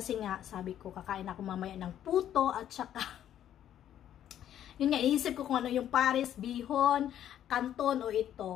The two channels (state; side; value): quieter; right; 10.8 dB